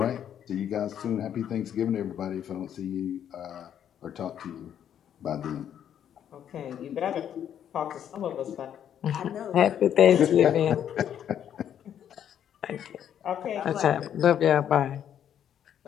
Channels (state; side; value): quieter; right; 9.6 dB